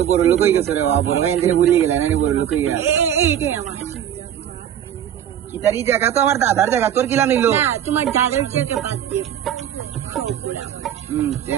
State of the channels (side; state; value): left; quieter; 10.2 dB